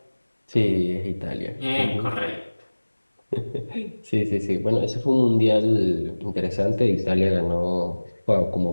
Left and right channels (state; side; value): inverted; both; correlation -1.00